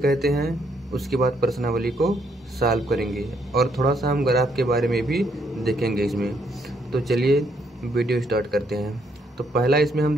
हैं, उसके बाद प्रश्नावली को सॉल्व करेंगे और थोड़ा सा हम ग्राफ के बारे में भी देखेंगे इसमें। तो चलिए वीडियो स्टार्ट करते हैं। तो पहला इसमें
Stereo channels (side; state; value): both; normal; correlation 0.73